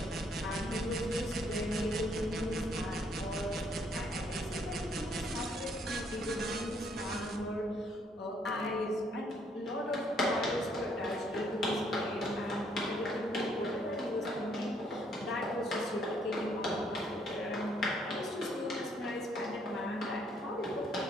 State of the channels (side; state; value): both; normal; correlation 0.68